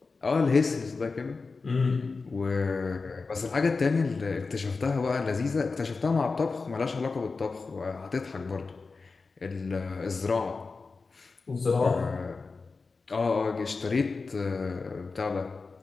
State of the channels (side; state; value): right; quieter; 4.2 dB